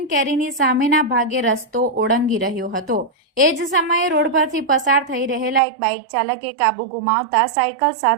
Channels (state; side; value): drops out; left; at 5.6 s